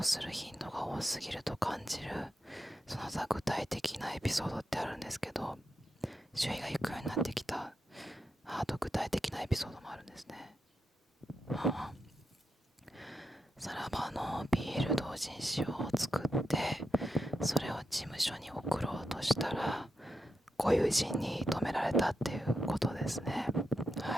する頻度が多すぎると感じる、その他具体的なエピソードってあるんですけど、周囲が引くようになってきた、あと具体的なエピソードもあるんですね。さらばの BL 同人誌を作ってそれを事務所に送ろうとしたらご友人に止められたっていうことですね。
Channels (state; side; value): normal; both; correlation 0.86